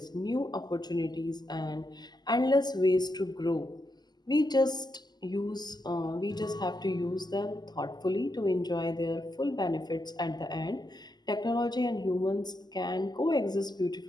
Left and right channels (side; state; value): right; late; 0.20 ms